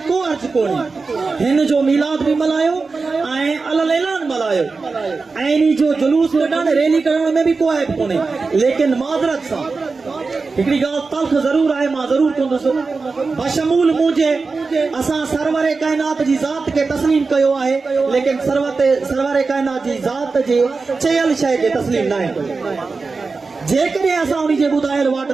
को अर्ज़ु कोन्हे हिन जो मीलाद बि मल्हायो ऐं अलल ऐलान मल्हायो ऐं इन जो जुलूस कढणु रैली करण में बि को ऐब कोन्हे लेकिन माज़रत सां हिकिड़ी ॻाल्हि तल्ख़ ज़रूर आहे मां ज़रूर कंदुसि बशमूल मुंहिंजे असां सरवर काइनात जी ज़ात खे तस्लीम कयो आहे लेकिन सरवर काइनात जी ज़ात जे चयल शइ खे तस्लीम न आहे जेकॾहिं असां उन जे ॿुधायल वाट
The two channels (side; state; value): left; quieter; 4.2 dB